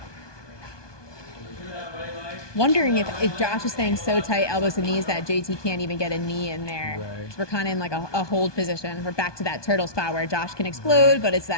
Wondering if Josh is staying so tight, elbows and knees, that JT can't even get a knee in there. Right. So we're kind of in like a hold position. We're back to that turtle spot where Josh can explode, but it's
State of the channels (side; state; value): right; late; 1.2 ms